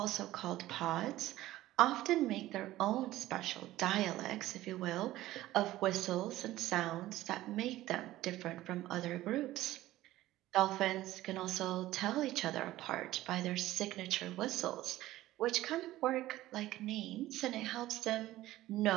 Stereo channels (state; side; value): quieter; left; 15.7 dB